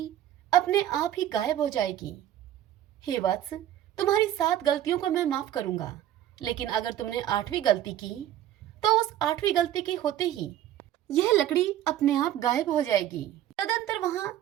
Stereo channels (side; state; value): left; quieter; 12.0 dB